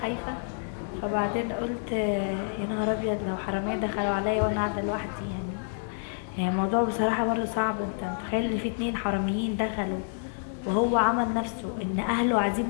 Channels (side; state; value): right; silent; digital silence